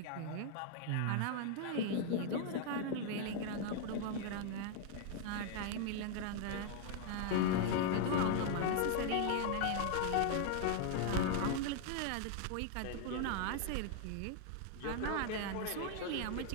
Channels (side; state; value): both; different; correlation 0.00